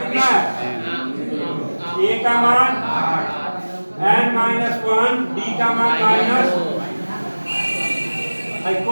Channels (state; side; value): inverted; both; correlation -1.00